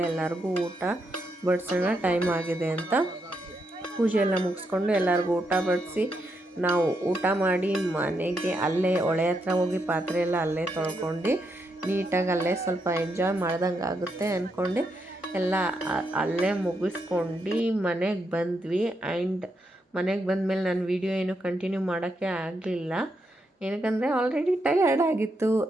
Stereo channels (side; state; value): both; normal; correlation 0.81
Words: ಎಲ್ಲರಿಗೂ ಊಟ ಬಡಿಸೋಣ ಟೈಮ್ ಆಗಿದೆ ಅಂತ ಪೂಜೆ ಎಲ್ಲ ಮುಗಿಸ್ಕೊಂಡು ಎಲ್ಲರಿಗೂ ಊಟ ಬಡಿಸಿ ನಾವು ಊಟ ಮಾಡಿ ಮನೆಗೆ ಅಲ್ಲೇ ಹೊಳೆ ಹತ್ರ ಹೋಗಿ ಪಾತ್ರೆ ಎಲ್ಲ ಅಲ್ಲೇ ತೊಳ್ಕೊಂಡು ನೀಟಾಗಿ ಅಲ್ಲೇ ಸ್ವಲ್ಪ ಎಂಜಾಯ್ ಮಾಡ್ದಂಗೆ ಆಗುತ್ತೆ ಅಂದ್ಕೊಂಡು ಎಲ್ಲ ಅಲ್ಲೇ ಮುಗಿಸ್ಕೊಂಡು ಮನೆಗೆ ಬಂದ್ವಿ. ಆ್ಯಂಡ್ ಮನೆಗೆ ಬಂದಮೇಲೆ ನಾನು ವೀಡಿಯೋ ಏನು ಕಂಟಿನ್ಯೂ ಮಾಡೋಕ್ಕೆ ಆಗಲಿಲ್ಲ, ಏನಕ್ಕಂದರೆ ಆಲ್ರೆಡಿ ಟಯರ್ಡ್ ಆಗಿತ್ತು